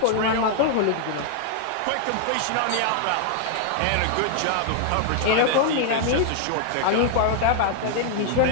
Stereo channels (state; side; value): different; both; correlation 0.00